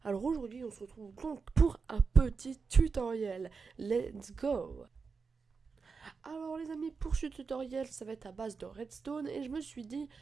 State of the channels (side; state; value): left; quieter; 5.0 dB